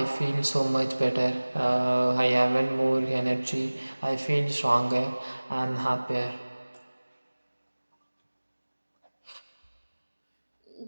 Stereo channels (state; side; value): inverted; both; correlation -1.00